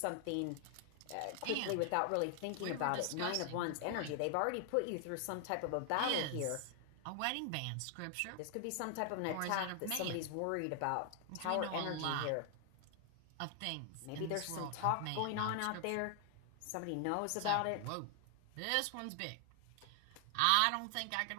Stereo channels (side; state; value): both; different; correlation 0.00